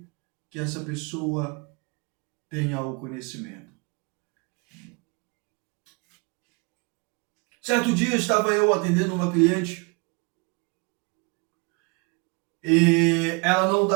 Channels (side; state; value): left; quieter; 31.0 dB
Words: que essa pessoa tenha o conhecimento. Certo dia estava eu atendendo uma cliente e ela não